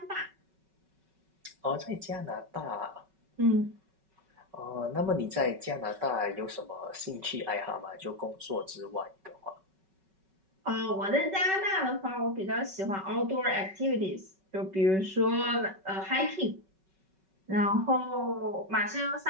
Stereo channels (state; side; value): late; left; 5.3 ms